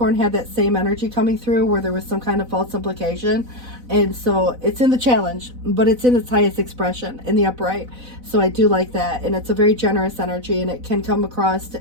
had that same energy coming through where there was some kind of false implication. And so it's in the challenge, but it's in its highest expression in the upright. So I do like that. And it's a very generous energy, and it can come across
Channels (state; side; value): late; left; 4.0 ms